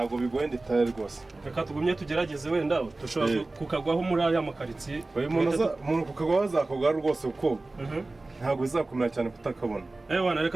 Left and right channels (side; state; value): left; quieter; 3.1 dB